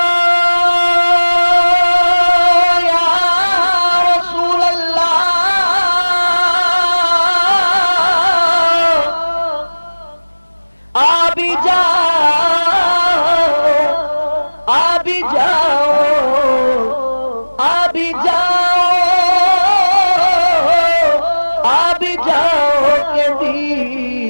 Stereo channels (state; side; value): inverted; both; correlation -1.00